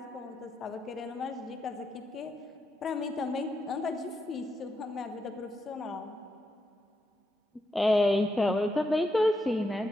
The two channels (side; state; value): both; normal; correlation 0.84